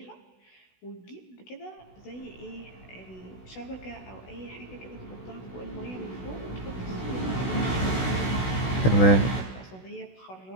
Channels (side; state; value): right; late; 16 ms